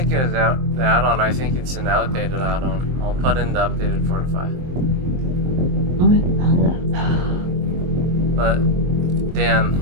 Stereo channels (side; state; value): left; late; 23 ms